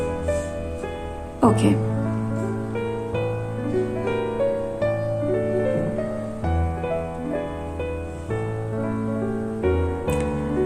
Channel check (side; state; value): both; identical; correlation 1.00